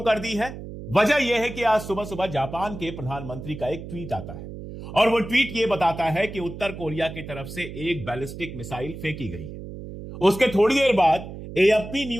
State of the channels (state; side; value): noise; right; hum, 11 dB below the sound